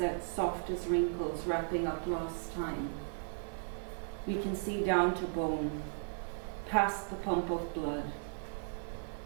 soft as wrinkles wrapping up lost time. We can see down to bone, past the pump of blood.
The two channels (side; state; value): left; silent; digital silence